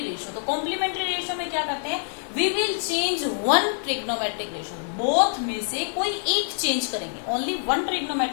ratio. तो कॉम्प्लीमेंट्री रेशियो में क्या करते हैं? We will change one trigonometric ratio. Both में से कोई एक चेंज करेंगे. Only one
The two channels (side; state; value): right; silent; digital silence